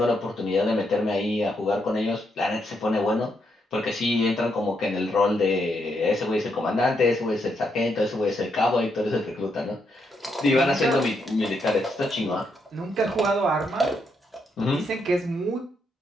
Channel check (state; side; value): normal; both; correlation 0.78